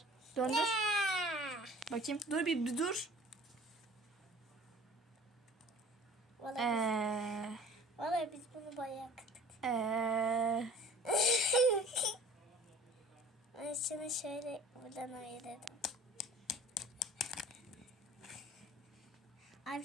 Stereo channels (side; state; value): both; normal; correlation 0.47